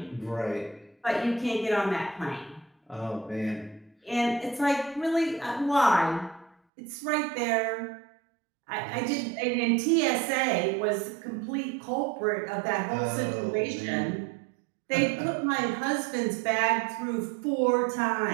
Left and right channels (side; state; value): left; drops out; at 6.6 s